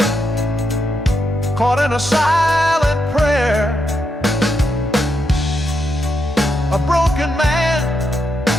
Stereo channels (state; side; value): normal; both; correlation 0.82